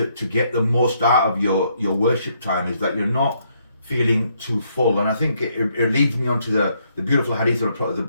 get the most out of your worship time, is that you're not feeling too full. And I think it leads me on to the beautiful hadith of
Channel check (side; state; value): both; inverted; correlation -0.73